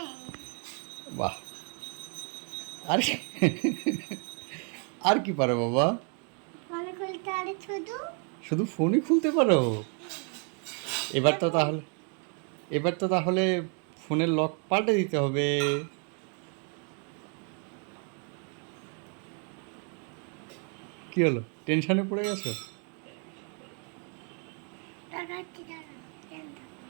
বাহ! আর আর কি পারো বাবা? ফোন খুলতে আরে শুধু শুধু ফোনই খুলতে পারো? এবার তো তাহলে এবার তো তাহলে ফোনের লক পাল্টে দিতে হবে। কি হলো, টেনশনে পড়ে গেছো? দেখাচ্ছি দাঁড়া।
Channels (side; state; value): left; quieter; 39.8 dB